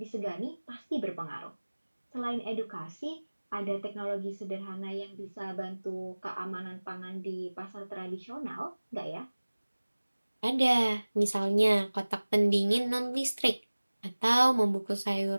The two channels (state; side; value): inverted; both; correlation -1.00